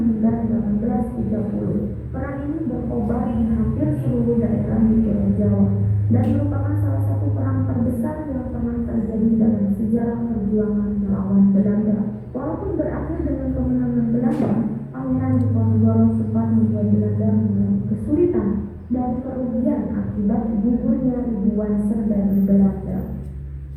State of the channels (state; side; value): identical; both; correlation 1.00